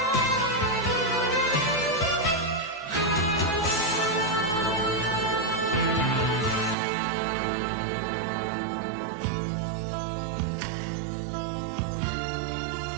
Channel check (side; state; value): left; drops out; at 6.8 s